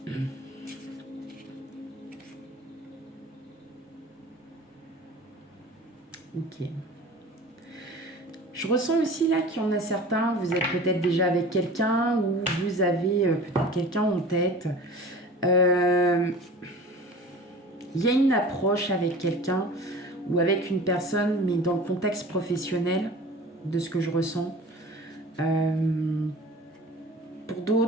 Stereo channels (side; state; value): both; normal; correlation 0.40